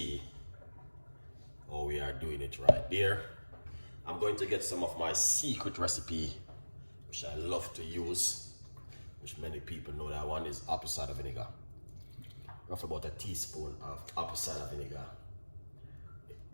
how we are doing it right there. I'm going to get some of my secret recipe, which I love to use, which many people know. That one is apple cider vinegar. Roughly about a teaspoon of apple cider vinegar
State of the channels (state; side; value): inverted; both; correlation -1.00